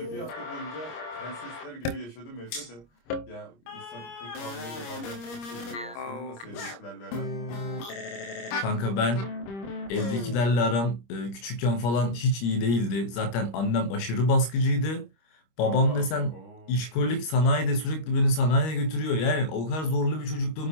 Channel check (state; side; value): late; right; 25 ms